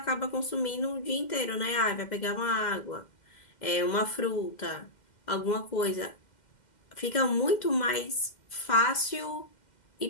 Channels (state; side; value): late; right; 2.1 ms